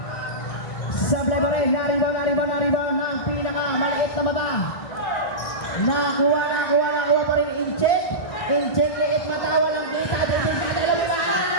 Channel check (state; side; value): late; right; 1.6 ms